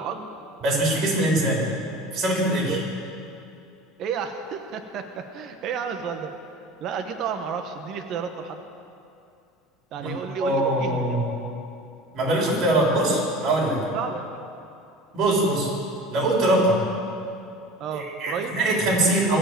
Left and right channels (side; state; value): both; normal; correlation 0.38